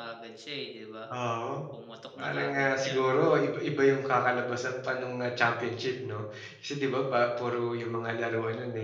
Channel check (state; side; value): identical; both; correlation 1.00